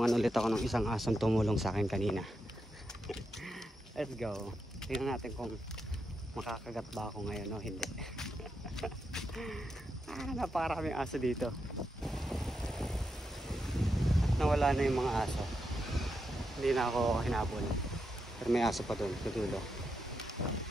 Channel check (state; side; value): normal; both; correlation 0.85